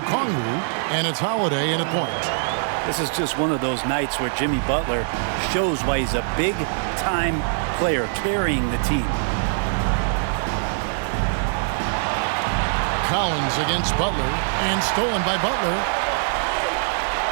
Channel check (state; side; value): silent; left; digital silence